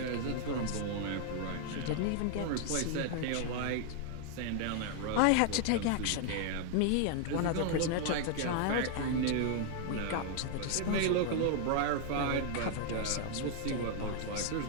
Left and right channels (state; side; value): different; both; correlation 0.00